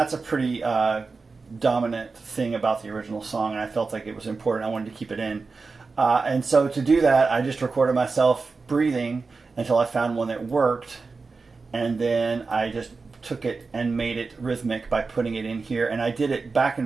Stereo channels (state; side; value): quieter; left; 4.3 dB